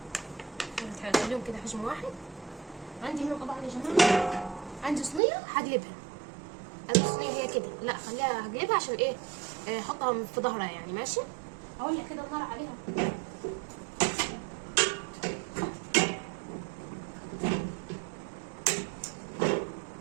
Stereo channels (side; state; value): left; drops out; at 5.2 s